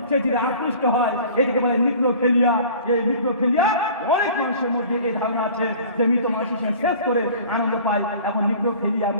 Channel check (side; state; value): both; inverted; correlation -0.45